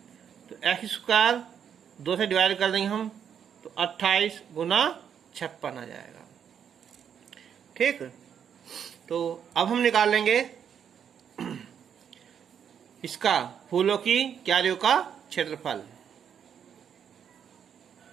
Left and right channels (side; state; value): left; quieter; 8.2 dB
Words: तो x स्क्वायर 2 से डिवाइड कर देंगे हम, तो 28 गुना 56 आ जाएगा। ठीक, तो अब हम निकाल लेंगे इसका फूलों की क्यारियों का क्षेत्रफल।